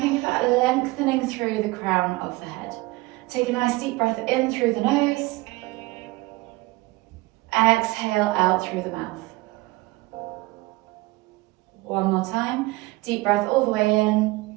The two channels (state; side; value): quieter; left; 21.5 dB